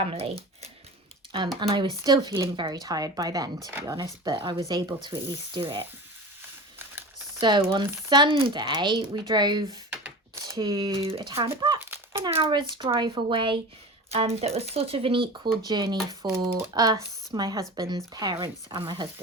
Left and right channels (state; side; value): normal; both; correlation 0.33